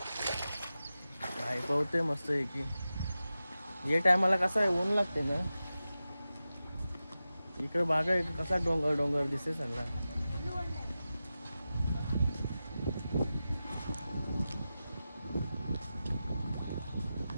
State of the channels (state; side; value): inverted; both; correlation -0.93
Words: काय पावते मस्त आहे की. या टायमाला कसं आहे ऊन लागते ना. इकडे बागा आहे कसा डोंगर डोंगर दिसते सगळा.